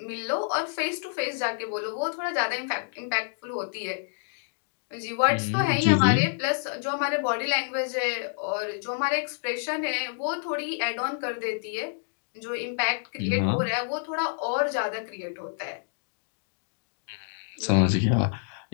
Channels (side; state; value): right; silent; digital silence